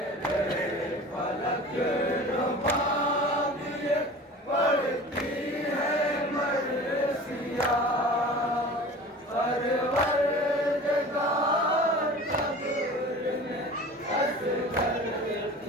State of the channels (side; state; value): both; normal; correlation 0.39